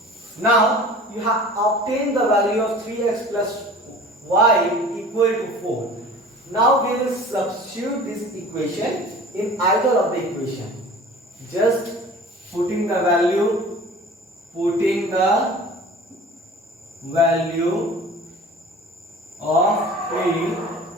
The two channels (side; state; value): both; normal; correlation 0.42